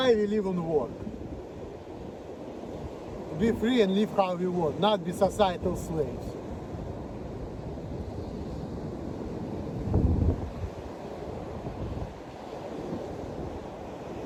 we live and work? To be free and live how we want, not be societal slaves.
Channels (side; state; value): both; identical; correlation 1.00